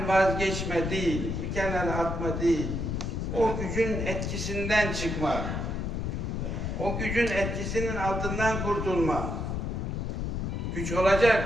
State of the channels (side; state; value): left; noise; rumble, 2 dB below the sound